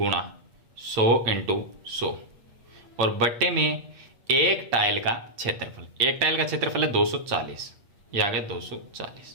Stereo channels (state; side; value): late; left; 8.8 ms